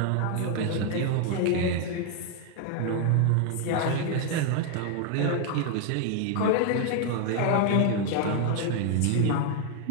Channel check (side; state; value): both; different; correlation 0.00